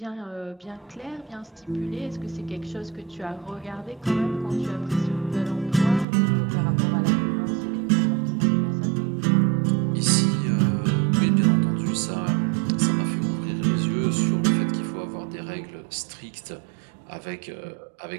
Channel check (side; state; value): left; drops out; at 6.1 s